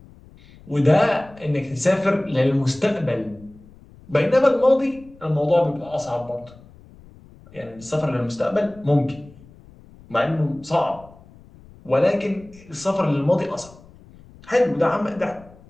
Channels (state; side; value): noise; left; rumble, 24 dB below the sound